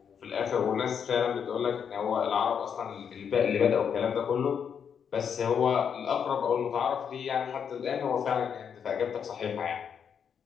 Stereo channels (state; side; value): quieter; right; 7.4 dB